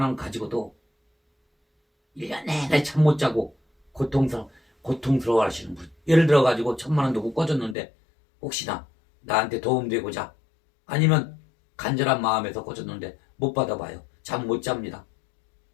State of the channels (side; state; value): right; drops out; at 7.8 s